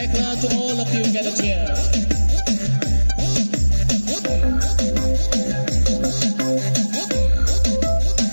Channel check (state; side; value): inverted; both; correlation -1.00